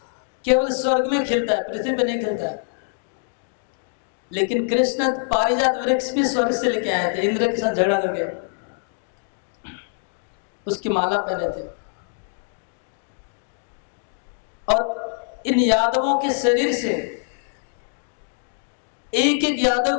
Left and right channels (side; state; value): right; silent; digital silence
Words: केवल स्वर्ग में खिलता है, पृथ्वी पर नहीं खिलता है। लेकिन कृष्ण पारिजात वृक्ष भी स्वर्ग से लेके आए थे, इंद्र के साथ झगड़ा करके उसकी माला पहने थे। और इन यादवों के शरीर से, एक एक